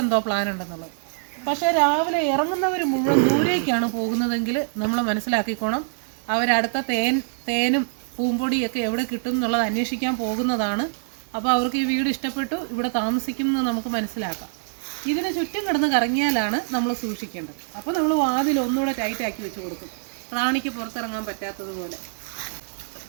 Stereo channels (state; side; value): silent; left; digital silence